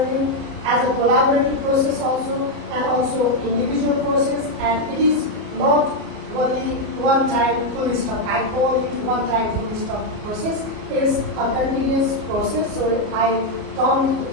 as a collaborative process also, and also individual process, and it is not only one-time full stop. I call it one-time full stop process. It is a continuous process, so I come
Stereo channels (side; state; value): left; late; 33 ms